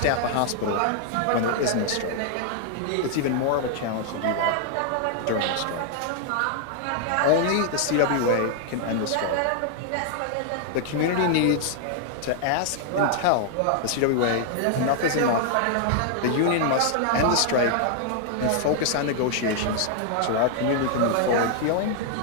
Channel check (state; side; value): different; both; correlation 0.00